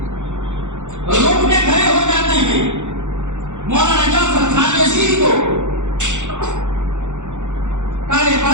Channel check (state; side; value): late; left; 0.85 ms